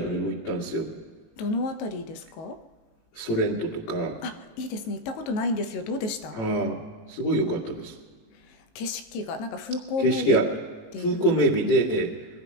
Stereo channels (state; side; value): late; right; 19 ms